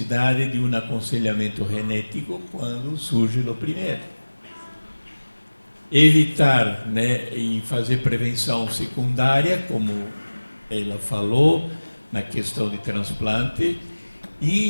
de um aconselhamento genético quando surge o primeiro. Evitar, e fazer prevenção secundária, como ela falou, na questão de transplante,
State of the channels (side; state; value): both; inverted; correlation -1.00